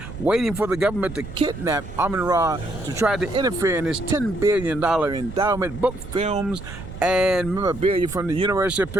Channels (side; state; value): right; noise; rumble, 11 dB below the sound